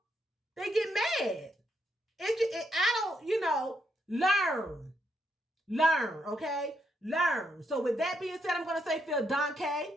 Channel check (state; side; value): normal; both; correlation 0.78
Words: they get mad. I don't, learn, okay? Learn. So with that being said, I'm going to say vielen Dank.